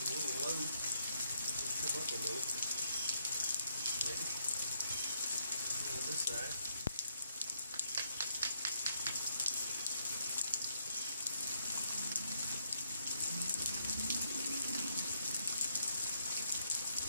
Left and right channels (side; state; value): both; inverted; correlation -0.74